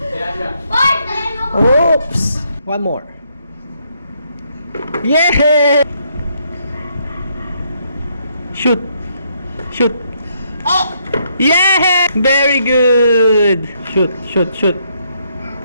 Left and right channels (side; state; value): both; inverted; correlation -0.73